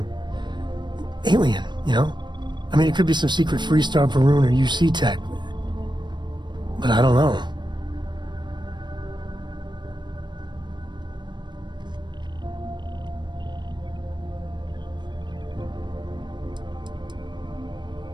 alien, you know? I mean, it could be some secret Freestar Varun or UC tech, but I don't know.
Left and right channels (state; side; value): late; left; 0.22 ms